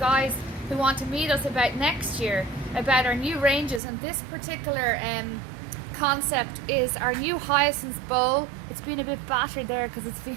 who want to meet us about next year, about our new ranges, and this particular concept is our new hyacinth bowl. It's been a bit battered there because it's been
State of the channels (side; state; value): left; drops out; at 3.8 s